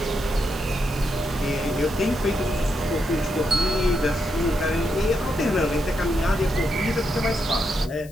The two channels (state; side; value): noise; left; hiss, 22 dB below the sound